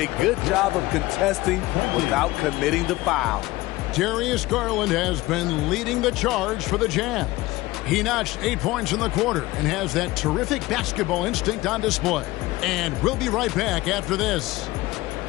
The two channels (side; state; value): right; quieter; 19.1 dB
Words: good job of contesting without committing the foul. Darius Garland has been leading the charge for the Jazz. He notched 8 points in the quarter and has that terrific basketball instinct on display. And we'll be right back after this.